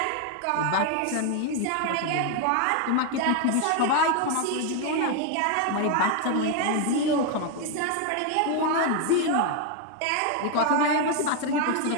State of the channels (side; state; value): both; different; correlation 0.01